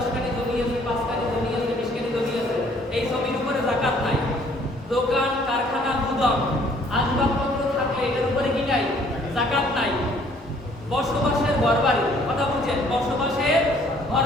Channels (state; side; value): normal; both; correlation 0.60